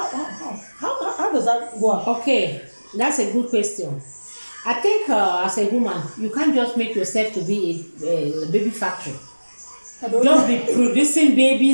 how does that work? Okay, that's a good question. I think as a woman, you can't just make yourself to be a baby factory. Just be producing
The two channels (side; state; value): both; inverted; correlation -1.00